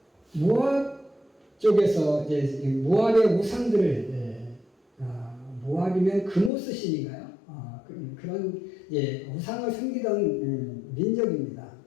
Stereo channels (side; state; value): right; drops out; at 6.5 s